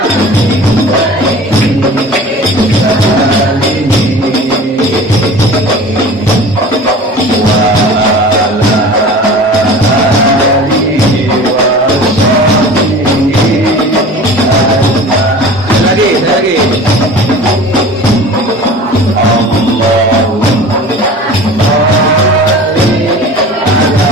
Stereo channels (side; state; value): both; normal; correlation 0.39